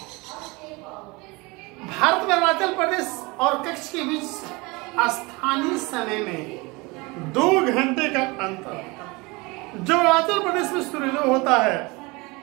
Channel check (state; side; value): quieter; left; 25.4 dB